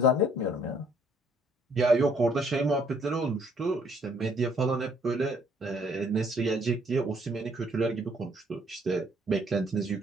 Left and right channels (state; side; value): normal; both; correlation 0.64